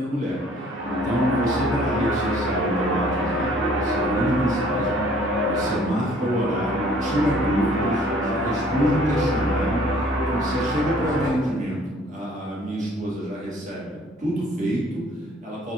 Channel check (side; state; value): both; normal; correlation 0.56